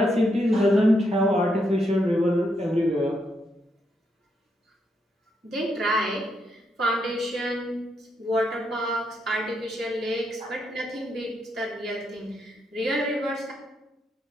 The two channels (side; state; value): both; normal; correlation 0.79